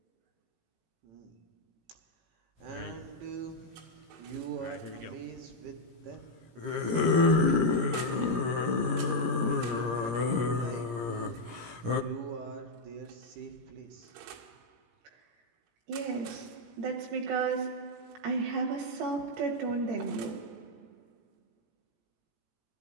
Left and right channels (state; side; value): late; left; 17 ms